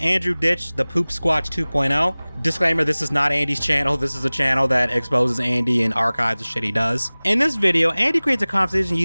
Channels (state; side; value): inverted; both; correlation -1.00